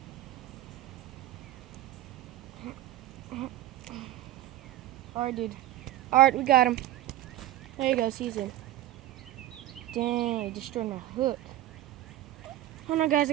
Alright, dude. Alright, we got him. There you go, Caesar. Dang, I destroyed my hook. Hold on, guys. I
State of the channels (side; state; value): left; quieter; 14.2 dB